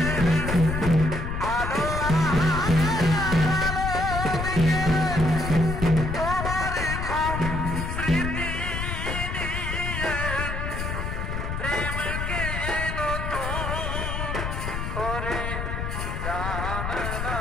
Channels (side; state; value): left; noise; rumble, 3 dB below the sound